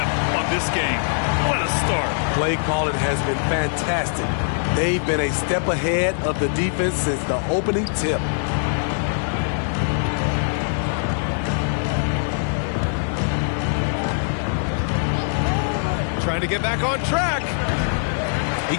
on this game. What a start. Play calling has been fantastic. They've been a step ahead of the defense since the opening tip. Trying to get back on track. He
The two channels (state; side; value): silent; right; digital silence